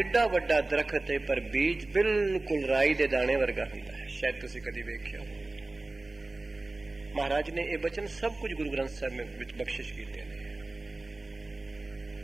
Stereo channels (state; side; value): quieter; left; 3.0 dB